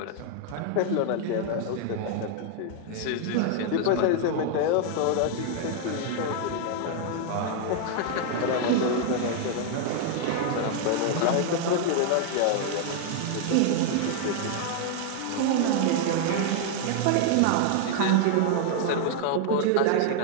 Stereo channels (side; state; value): both; different; correlation 0.00